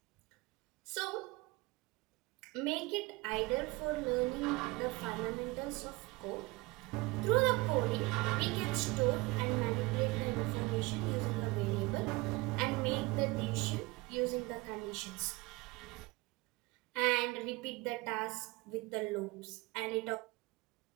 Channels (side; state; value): left; quieter; 23.7 dB